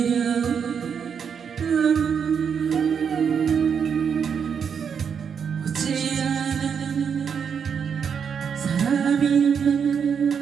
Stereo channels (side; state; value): left; quieter; 7.0 dB